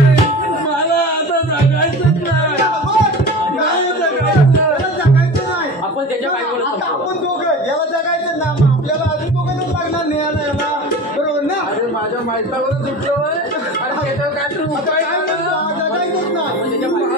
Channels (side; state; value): both; normal; correlation 0.33